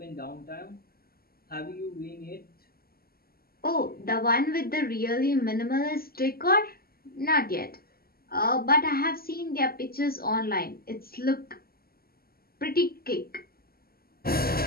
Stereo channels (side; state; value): right; late; 0.44 ms